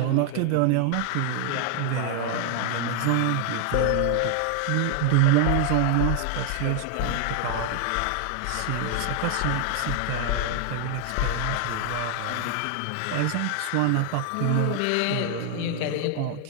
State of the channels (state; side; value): different; both; correlation 0.00